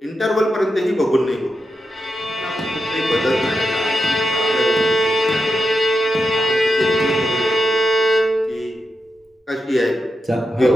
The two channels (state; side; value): normal; both; correlation 0.88